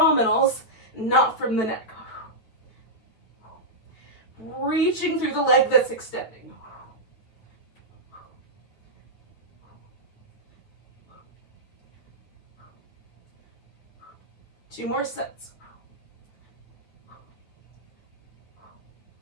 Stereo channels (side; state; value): right; late; 9.1 ms